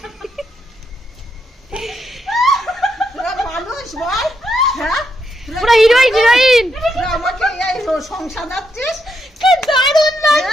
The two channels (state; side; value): normal; both; correlation 0.80